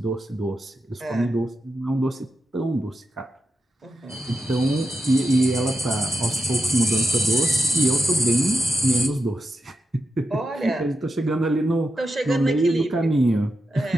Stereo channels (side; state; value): both; normal; correlation 0.88